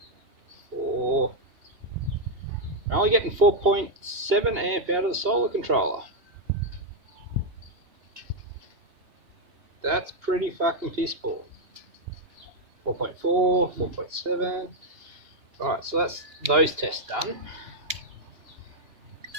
We're only getting 4.7 amp out of the solar controller. That's pretty fucking piss poor. 4.4, 4.7. Alright, so that's those tests done.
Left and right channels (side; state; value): left; late; 2.8 ms